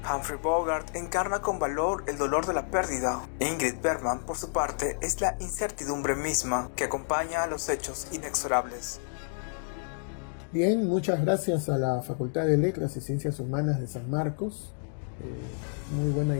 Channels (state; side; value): silent; right; digital silence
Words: Humphrey Bogart encarna con valor el dolor de la pérdida. Ingrid Bergman, por su parte, es la incertidumbre misma que acompaña a los hechos inexorables. Bien, muchas gracias a la Facultad de Letras y Ciencias Humanas de San Marcos. Muy buena